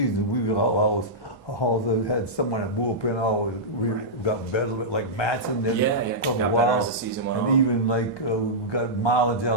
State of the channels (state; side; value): normal; both; correlation -0.12